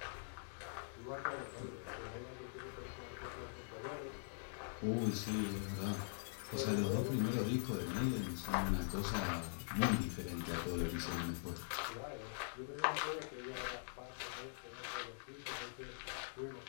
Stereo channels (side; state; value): right; silent; digital silence